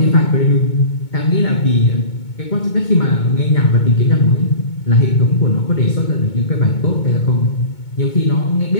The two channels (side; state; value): right; late; 2.2 ms